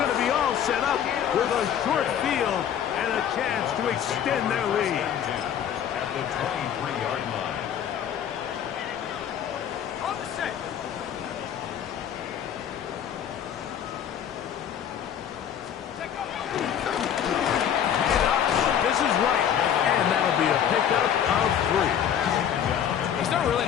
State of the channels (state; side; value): quieter; right; 9.3 dB